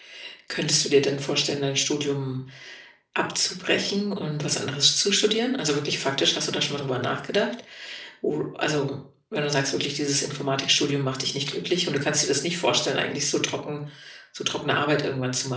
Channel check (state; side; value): identical; both; correlation 1.00